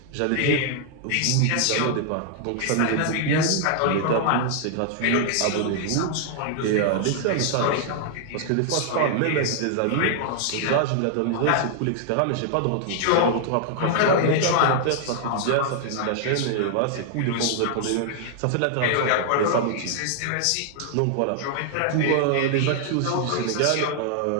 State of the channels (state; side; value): different; both; correlation 0.00